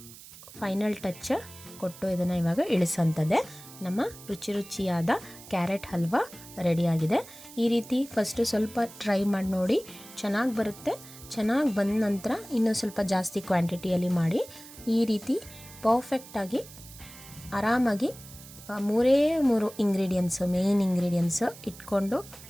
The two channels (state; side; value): noise; right; hiss, 18 dB below the sound